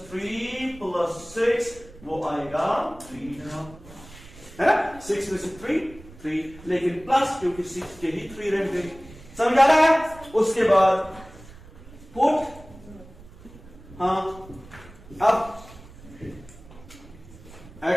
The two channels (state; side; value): noise; right; rumble, 20 dB below the sound